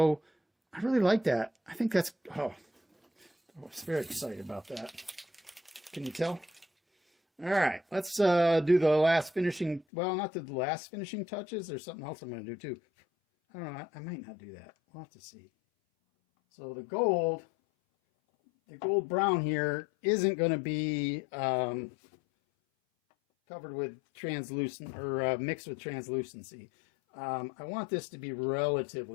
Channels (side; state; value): right; drops out; at 9.9 s